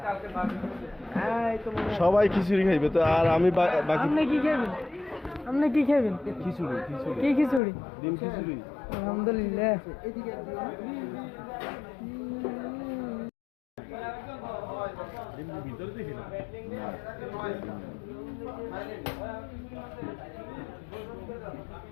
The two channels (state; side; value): drops out; right; at 7.6 s